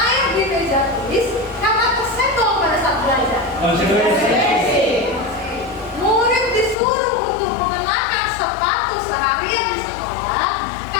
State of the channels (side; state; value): right; drops out; at 6.8 s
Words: di meja tulis karena tersenggol pada saat belajar. Murid disuruh untuk mengenakan sepatu seharian di sekolah